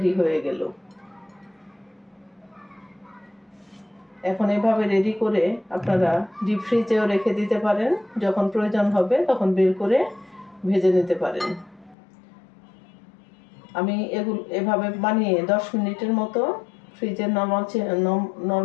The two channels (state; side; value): drops out; right; at 12.0 s